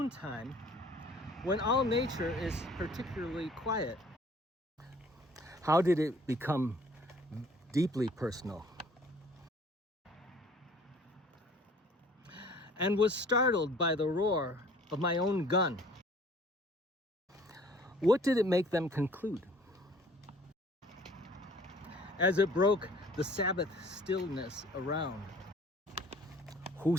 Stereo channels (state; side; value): normal; both; correlation 0.53